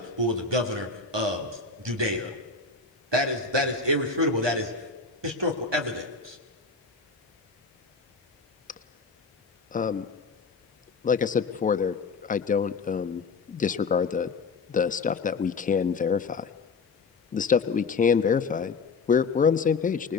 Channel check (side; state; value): right; quieter; 4.4 dB